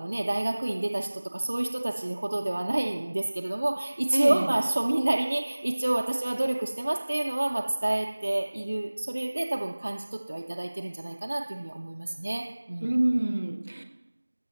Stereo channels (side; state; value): both; inverted; correlation -1.00